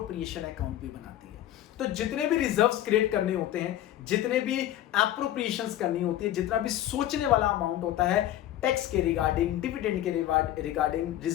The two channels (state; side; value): quieter; right; 12.9 dB